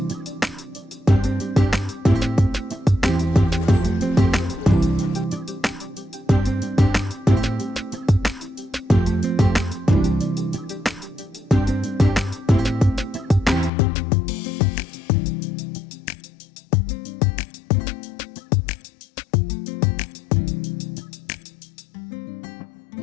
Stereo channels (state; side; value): drops out; right; at 13.7 s